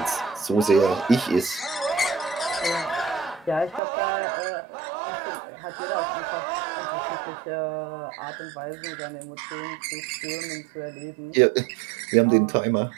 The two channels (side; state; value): left; drops out; at 3.8 s